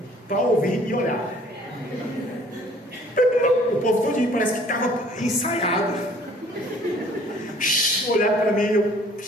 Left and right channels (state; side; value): normal; both; correlation 0.55